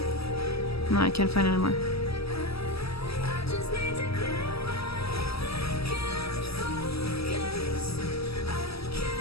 No, I can't find it anymore.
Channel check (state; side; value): late; right; 0.77 ms